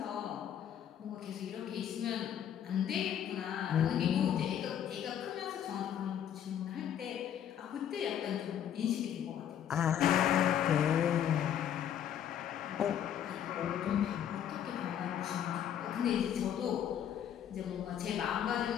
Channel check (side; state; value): right; quieter; 9.7 dB